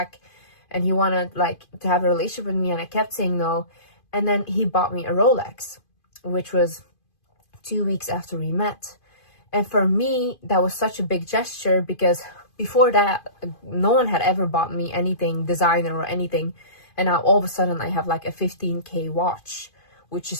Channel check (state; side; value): late; right; 2.5 ms